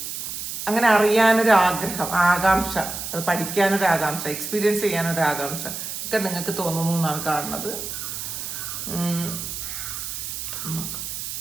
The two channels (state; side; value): noise; right; hiss, 6 dB below the sound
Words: അങ്ങനെ അറിയാനൊരു ആഗ്രഹം, ആകാംക്ഷ, അത് പഠിക്കാനൊരു ആകാംക്ഷ, എക്സ്പീരിയൻസ് ചെയ്യാനൊരു ആകാംക്ഷ ഒക്കെ നിങ്ങൾക്ക് തോന്നുന്നു എന്നാണ് കാണുന്നത്.